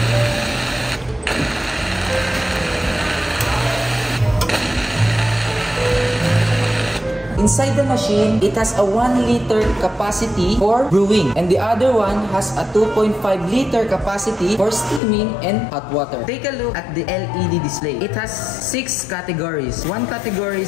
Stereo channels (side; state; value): right; drops out; at 15.0 s